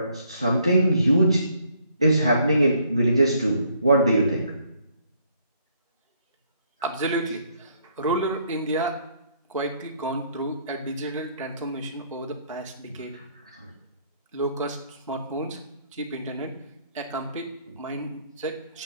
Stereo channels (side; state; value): both; inverted; correlation -0.67